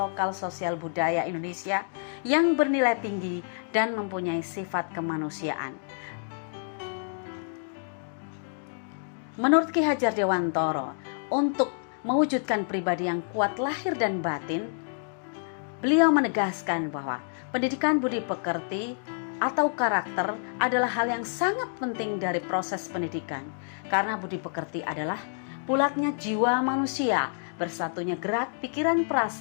sosial budaya Indonesia yang bernilai tinggi dan mempunyai sifat kemanusiaan. Menurut Ki Hajar Dewantara, untuk mewujudkan pribadi yang kuat lahir dan batin, beliau menegaskan bahwa pendidikan budi pekerti atau karakter adalah hal yang sangat penting dari proses pendidikan, karena budi pekerti adalah bulatnya jiwa manusia, bersatunya gerak, pikiran,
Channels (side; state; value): right; silent; digital silence